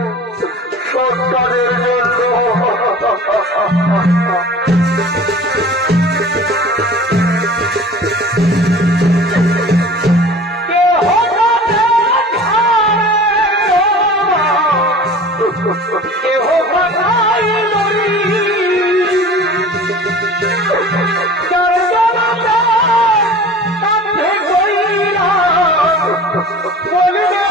সৎ কাজের জন্য।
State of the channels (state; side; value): normal; both; correlation 0.41